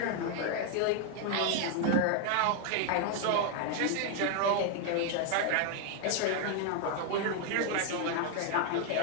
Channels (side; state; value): both; different; correlation 0.01